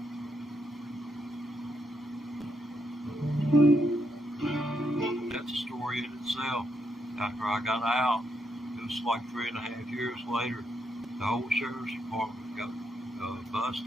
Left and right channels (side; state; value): both; normal; correlation 0.79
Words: That's a story in itself. After I got out, it was like 3.5 years later, the whole sheriff's department got